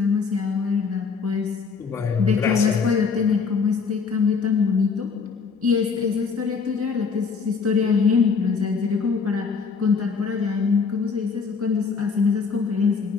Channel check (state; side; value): quieter; right; 5.3 dB